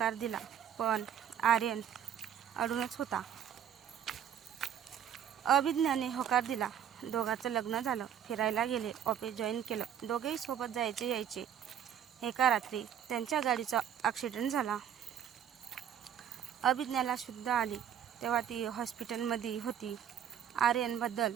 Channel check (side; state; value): left; quieter; 9.3 dB